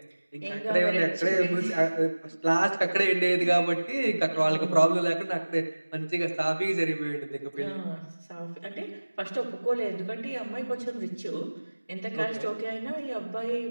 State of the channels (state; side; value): inverted; both; correlation -1.00